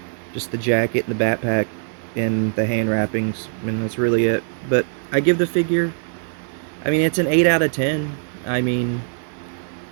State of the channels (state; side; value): silent; left; digital silence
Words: Just the jacket, the backpack, and the hand wrappings. I mean, that's really it. But I give the figure, I mean, it's an 8 out of 10. I mean,